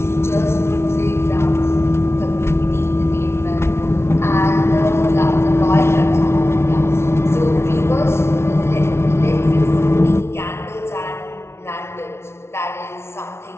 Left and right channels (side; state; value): right; late; 0.12 ms